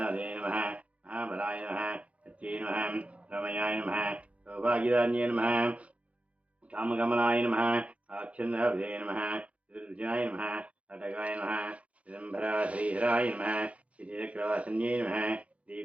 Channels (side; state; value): left; late; 0.064 ms